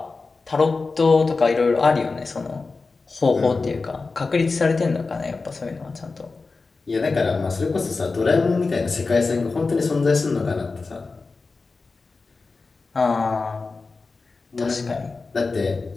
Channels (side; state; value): right; quieter; 4.0 dB